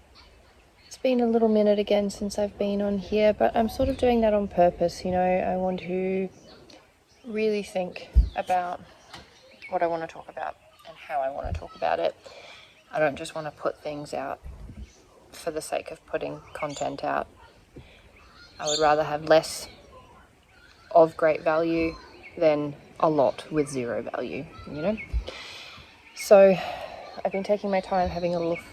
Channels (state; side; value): identical; both; correlation 1.00